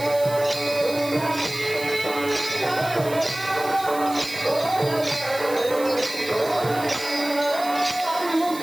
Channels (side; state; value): right; noise; hiss, 14 dB below the sound